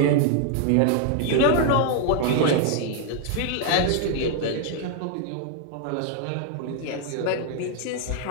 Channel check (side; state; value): both; different; correlation 0.00